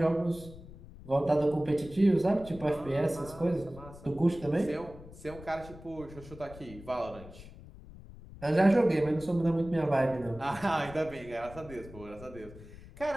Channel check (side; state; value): left; noise; rumble, 17 dB below the sound